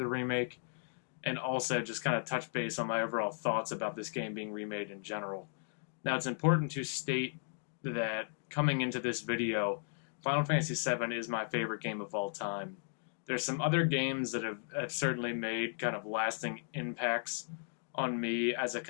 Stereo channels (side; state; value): right; silent; digital silence